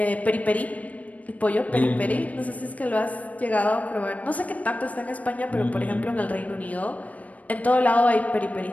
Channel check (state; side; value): late; right; 0.070 ms